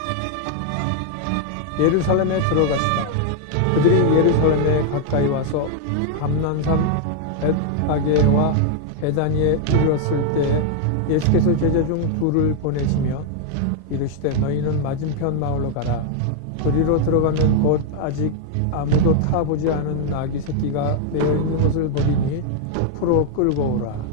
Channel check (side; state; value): both; different; correlation 0.00